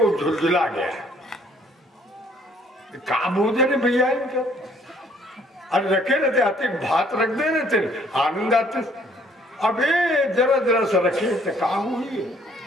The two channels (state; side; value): normal; both; correlation 0.62